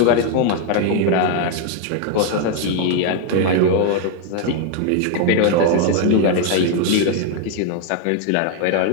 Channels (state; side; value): different; both; correlation 0.00